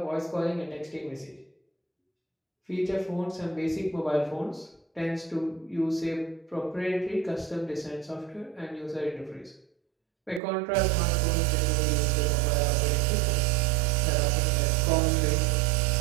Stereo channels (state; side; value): drops out; left; at 10.4 s